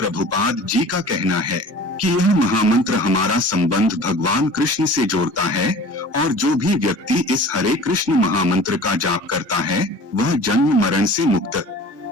जी का कहना है कि यह महामंत्र हमारा संबंध भगवान कृष्ण से जोड़ता है और जो भी व्यक्ति इस हरे कृष्ण महामंत्र का जाप करता है वह जन्म मरण से मुक्त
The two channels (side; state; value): left; late; 1.2 ms